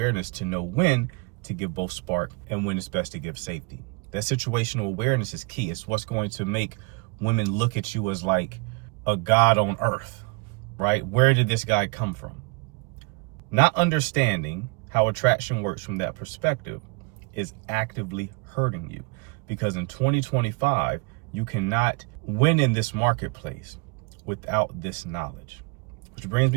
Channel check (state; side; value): quieter; left; 29.2 dB